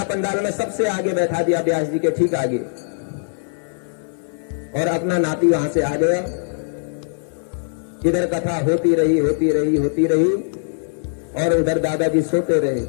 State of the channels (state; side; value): silent; right; 63 dB below the other